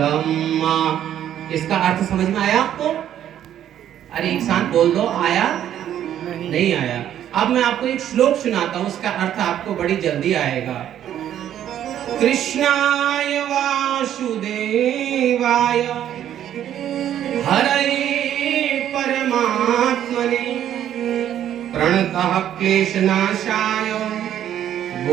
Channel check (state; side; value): quieter; left; 10.8 dB